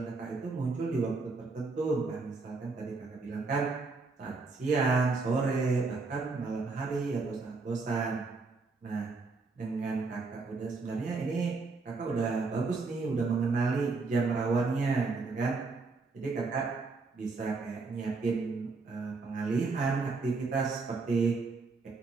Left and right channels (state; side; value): quieter; left; 4.0 dB